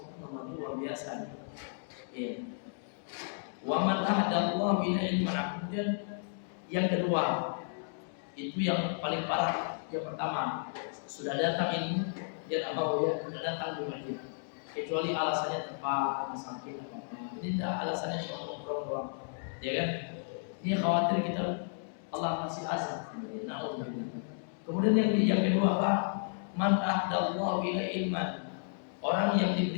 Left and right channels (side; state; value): right; silent; digital silence